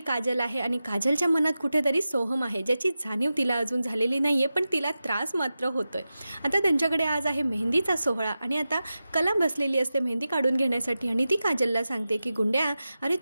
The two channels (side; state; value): both; inverted; correlation -0.93